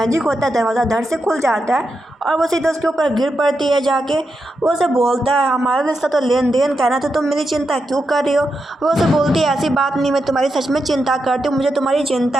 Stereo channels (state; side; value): normal; both; correlation 0.86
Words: होता है, दरवाज़ा धड़ से खुल जाता है और वो सीधा उसके ऊपर गिर पड़ती है जाके। वो उसे बोलता है हमारा रिश्ता तो लेन देन का है ना, तो तुम मेरी चिंता क्यों कर रही हो। वो उसे बोलती है ऐसी बात नहीं, मैं तुम्हारी सच में चिंता करती हूँ, मुझे तुम्हारी चिंता